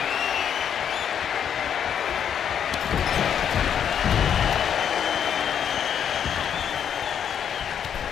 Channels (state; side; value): quieter; right; 8.5 dB